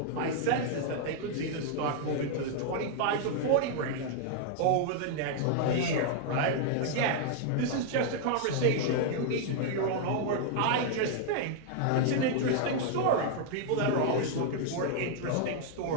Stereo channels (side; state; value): both; different; correlation -0.01